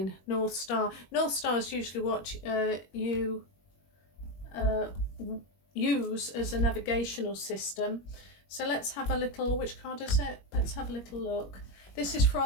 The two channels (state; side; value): late; right; 21 ms